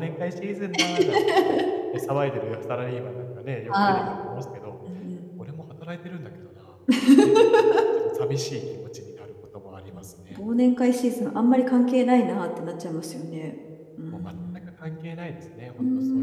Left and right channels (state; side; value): identical; both; correlation 1.00